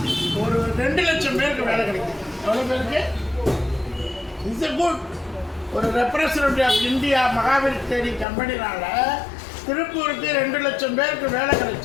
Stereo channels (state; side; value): drops out; right; at 8.2 s